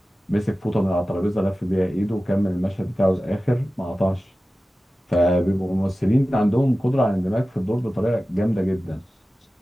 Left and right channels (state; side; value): normal; both; correlation 0.95